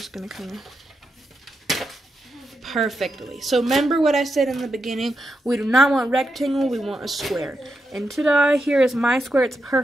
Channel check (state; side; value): normal; both; correlation 0.86